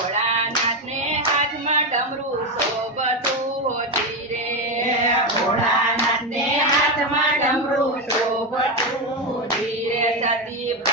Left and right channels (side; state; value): both; normal; correlation 0.12